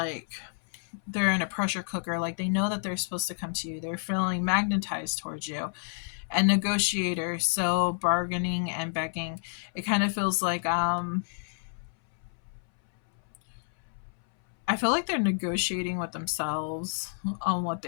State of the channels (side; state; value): right; silent; 58 dB below the other